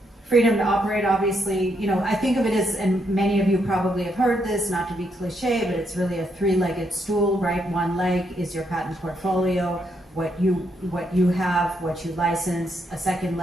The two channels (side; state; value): both; normal; correlation 0.77